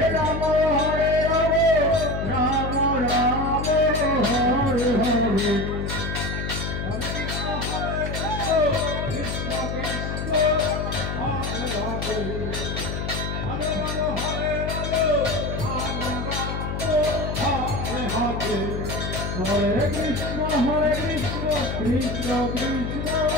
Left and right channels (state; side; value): noise; left; hum, 3 dB below the sound